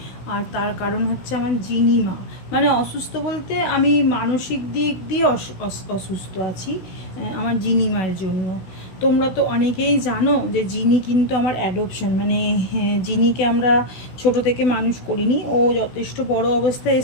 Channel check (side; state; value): right; late; 16 ms